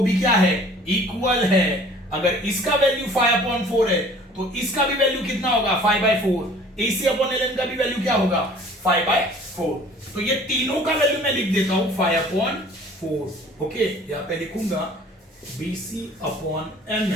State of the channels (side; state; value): both; normal; correlation 0.50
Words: भी क्या है इक्वल है, अगर इसका वैल्यू 5/4 है तो इसका भी वैल्यू कितना होगा 5/4, A C upon L N का भी वैल्यू क्या होगा 5/4, तो ये तीनों का वैल्यू मैं लिख देता हूं 5/4। ओके, यहां पे लिखूंगा B C upon M